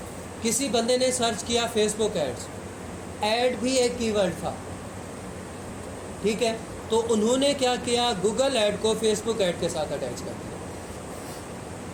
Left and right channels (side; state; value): both; identical; correlation 1.00